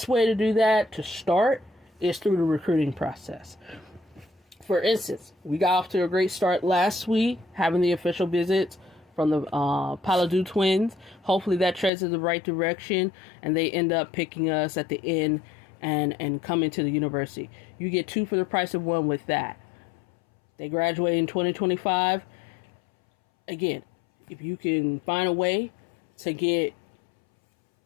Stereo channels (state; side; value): drops out; right; at 11.9 s